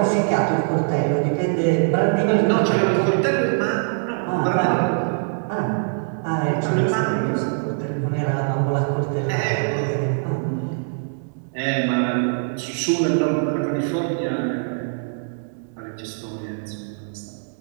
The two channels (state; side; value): silent; left; 64 dB below the other